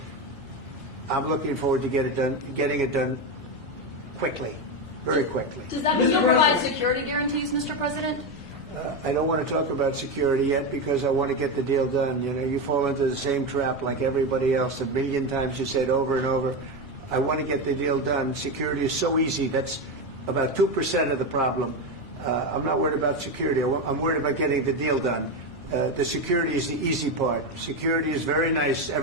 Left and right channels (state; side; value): normal; both; correlation 0.13